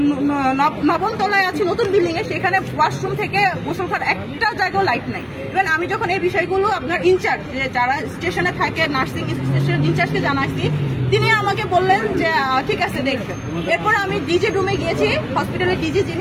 9ম তলায় আছি, নতুন বিল্ডিং এ, সেখানে ওয়াশরুম থেকে গোসল করার একটা জায়গাও লাইট নাই। ইভেন আমি যখন এই বিষয়গুলো আপনার ইনচার্জ যারা স্টেশনে থাকে, নার্সিং স্টেশনের ইনচার্জকে জানাইছি, তিনি আমাকে বললেন যে ঠিক আছে দেখবেন। এরপর আমি ডিজি রুমে গিয়েছি, হসপিটালের ডিজি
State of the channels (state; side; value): identical; both; correlation 1.00